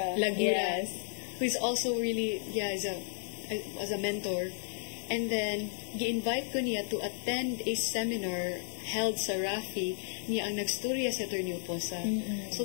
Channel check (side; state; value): right; silent; digital silence